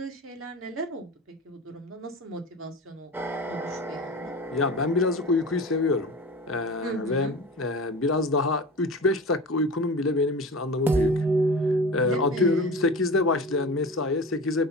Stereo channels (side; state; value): both; normal; correlation 0.33